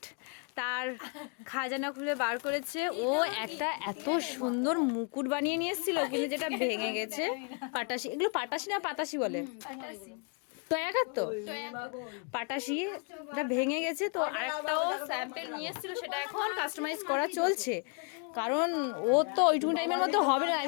তার খাজানা খুলে বার করেছে। ও একটা এত সুন্দর মুকুট বানিয়ে নিয়ে এসেছিল, কিন্তু যেটা ভেঙে গেছে। পাটাশি, এগুলো পাটাশি না পাতাশি বলে? তয়াকার তো পাটাশি, এটা ভেঙে গেছে। তো আরেকটাও স্যাম্পেল নিয়ে এসেছিল, সেটা এখন কাস্টমাইজ করা চলছে, কারণ ও তো ওইটুকু টাইমের মধ্যে হবে না।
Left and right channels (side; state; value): right; quieter; 37.6 dB